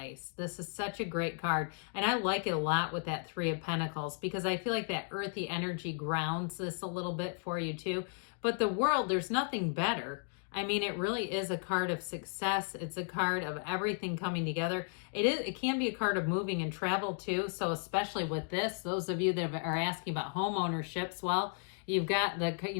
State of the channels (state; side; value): silent; right; 55 dB below the other